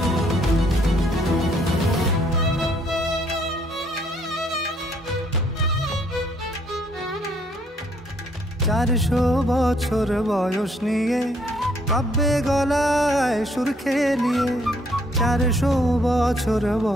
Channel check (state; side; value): normal; both; correlation 0.67